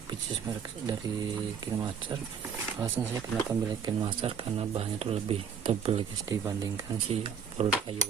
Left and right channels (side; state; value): left; quieter; 7.1 dB